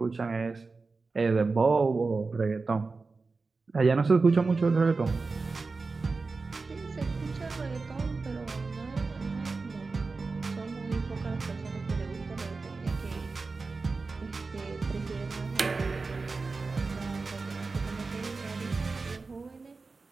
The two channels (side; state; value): left; quieter; 4.1 dB